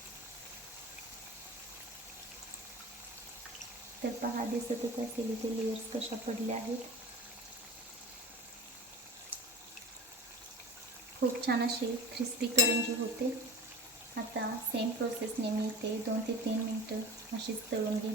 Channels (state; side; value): normal; both; correlation 0.34